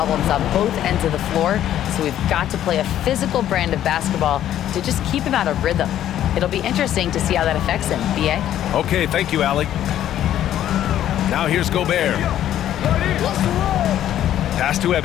on both ends of the floor, so we've got to play a physical brand of basketball to just keep him out of rhythm. It'll be interesting to see how that affects him. B.A.? Okay, thank you, Allie. Now here's Gobert. Pass to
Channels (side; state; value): right; quieter; 11.6 dB